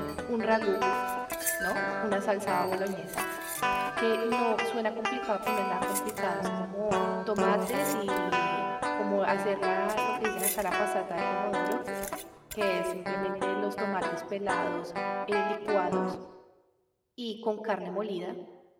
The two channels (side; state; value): both; identical; correlation 1.00